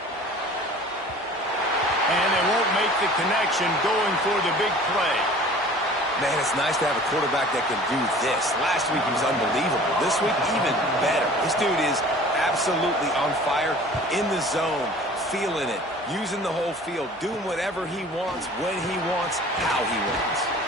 And they won't make the connection going for the big play. Man, it's nice to have a quarterback that can do this. Last week he was unbelievable. This week, even better. This dude is absolutely on fire, in the zone, feeling it, using the whole field, doing whatever he wants, when he wants, how he wants.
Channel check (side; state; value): both; normal; correlation 0.46